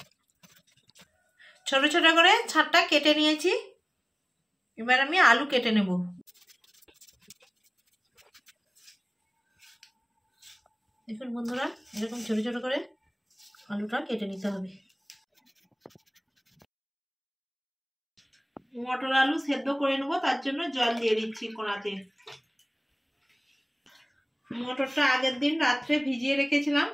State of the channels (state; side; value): identical; both; correlation 1.00